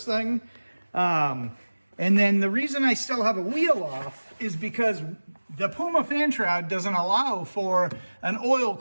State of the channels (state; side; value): inverted; both; correlation -1.00